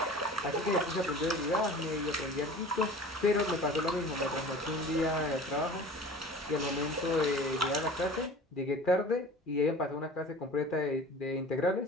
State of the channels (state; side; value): normal; both; correlation 0.41